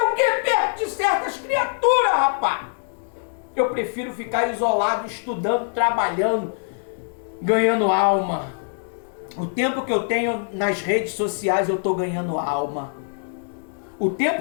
que perto de certas criaturas, rapaz? Eu prefiro ficar isolado, estudando, trabalhando, ganhando alma. O tempo que eu tenho nas redes sociais, eu estou ganhando alma. O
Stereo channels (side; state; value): right; silent; digital silence